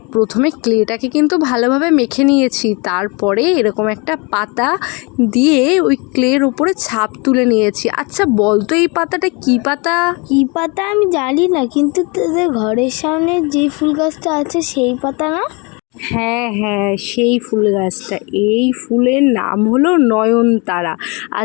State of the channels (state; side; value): quieter; right; 29.5 dB